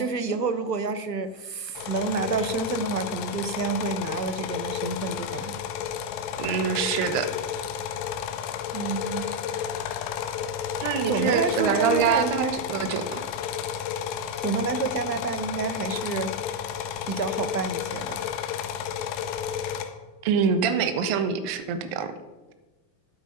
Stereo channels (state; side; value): late; right; 1.4 ms